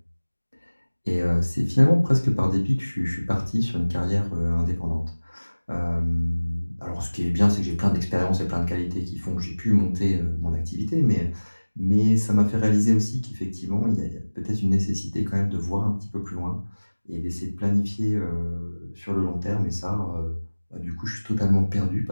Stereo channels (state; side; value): inverted; both; correlation -1.00